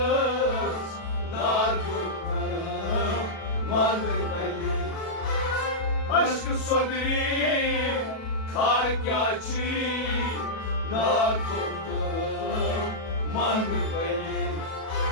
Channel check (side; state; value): right; late; 37 ms